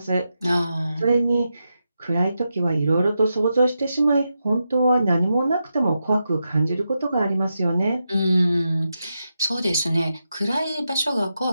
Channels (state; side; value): inverted; both; correlation -0.87